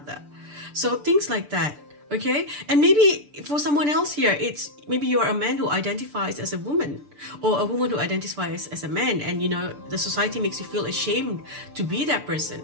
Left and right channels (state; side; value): late; left; 6.8 ms